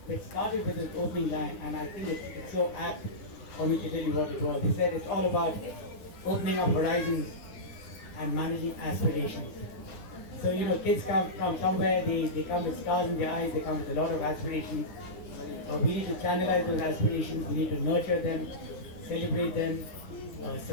which started with his opening line, and I think it's so apt for me to tell you what it was. He said it's all about opening up horizons and managing aspirations. So kids come from somewhere, they come with stars in their eyes, they come with a lot of aspirations. We need to channelize those aspirations, we need to nurture them, celebrate them,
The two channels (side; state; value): right; late; 9.9 ms